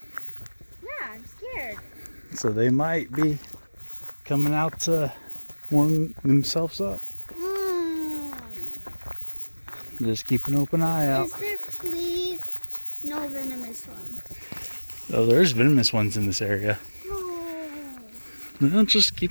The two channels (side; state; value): both; inverted; correlation -1.00